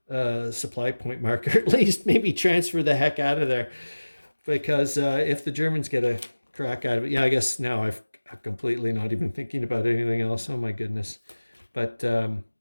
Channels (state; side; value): inverted; both; correlation -1.00